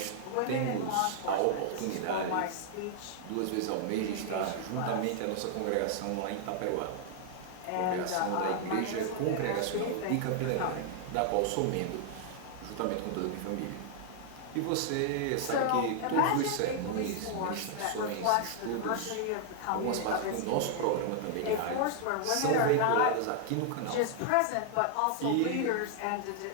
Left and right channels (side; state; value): both; different; correlation 0.00